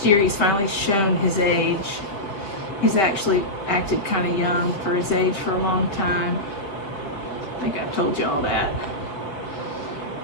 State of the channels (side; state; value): right; late; 5.2 ms